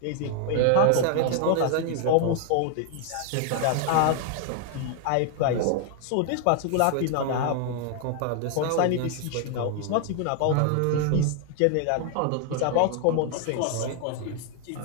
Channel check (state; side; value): different; both; correlation 0.00